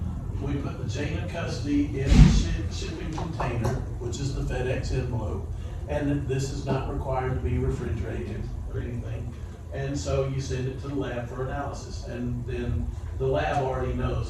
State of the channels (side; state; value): both; identical; correlation 1.00